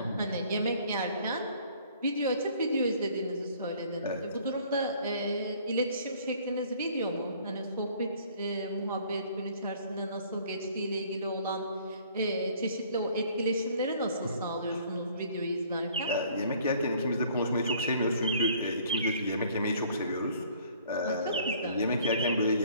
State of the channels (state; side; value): inverted; both; correlation -0.56